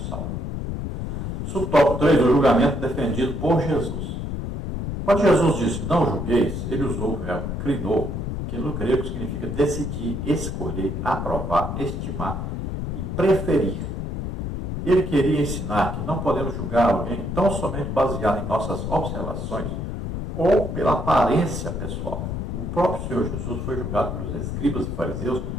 Subtópico 3, o julgamento defendido por Jesus. Quando Jesus disse, não julgueis, ele usou o verbo krinou, que no grego significa decidir, escolher, aprovar, estimar e preferir. Ele queria ensinar que não podemos julgar alguém tão somente baseado em nossas observações ou pela aparência pessoal. O próprio Senhor Jesus foi julgado pelos escribas e fariseus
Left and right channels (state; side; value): noise; left; rumble, 4 dB below the sound